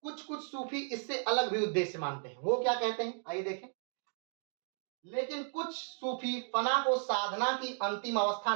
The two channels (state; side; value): silent; left; digital silence